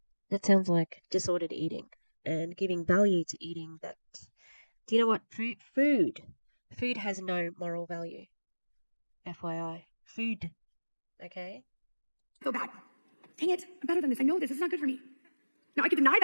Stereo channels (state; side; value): inverted; both; correlation -1.00